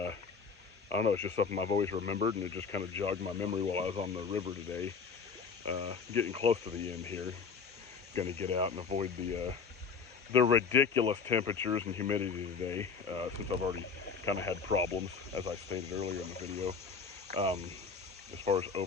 don't know, it's just something I've always remembered, and it just kind of jogged my memory while I was on the river today. Getting close to the end here. Going to get out and avoid the ridiculous temperatures and humidity today, since I've already kind of had problems, as I stated earlier in the video, as far as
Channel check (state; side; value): quieter; right; 5.6 dB